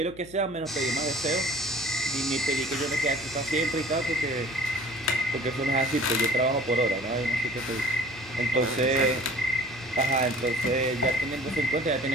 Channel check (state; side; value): noise; left; hum, 20 dB below the sound